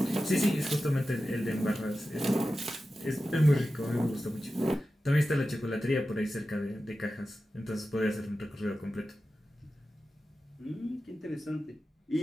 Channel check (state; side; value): normal; both; correlation 0.93